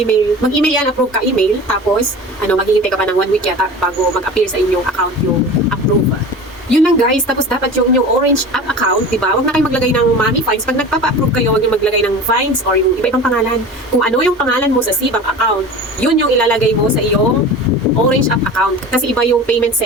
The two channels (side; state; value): both; normal; correlation 0.35